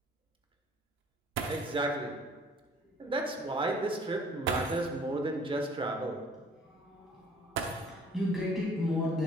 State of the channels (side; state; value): both; normal; correlation 0.54